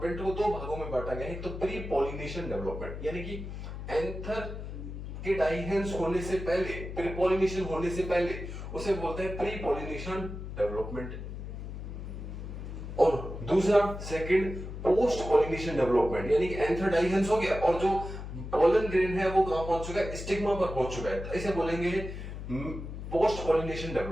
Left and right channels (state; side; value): noise; left; hum, 8 dB below the sound